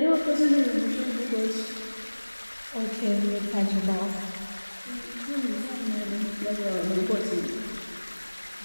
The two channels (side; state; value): both; inverted; correlation -1.00